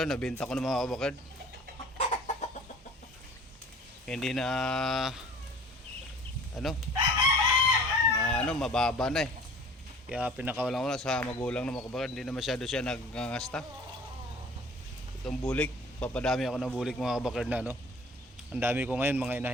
nabenta ko na mga kabakard. Hindi na mababa na eh. Kaya pinakawalan ko na sa magulang na mga kabakard. Hindi na masyado siya nagngangasta. Itong bulik, papadami ako ng bulik mga kabakard na no. Ang dami ko ngayon mga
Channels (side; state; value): both; normal; correlation 0.47